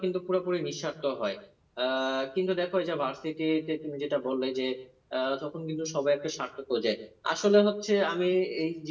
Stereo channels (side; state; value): both; identical; correlation 1.00